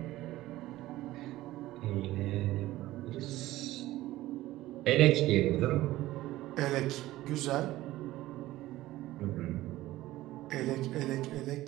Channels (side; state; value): left; quieter; 16.3 dB